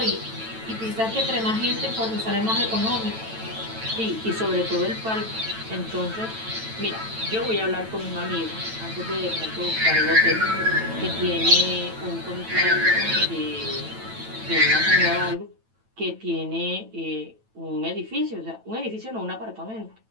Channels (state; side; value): late; left; 9.0 ms